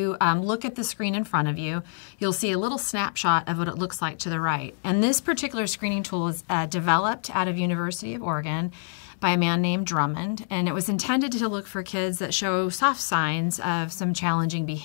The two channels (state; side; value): silent; right; digital silence